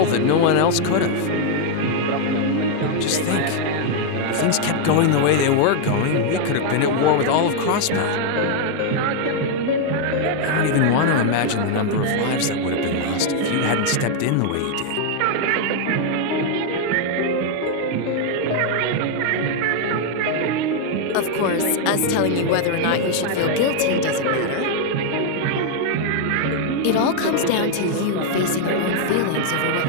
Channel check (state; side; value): different; both; correlation 0.00